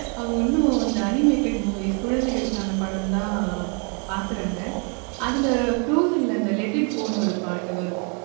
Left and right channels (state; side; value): quieter; left; 37.3 dB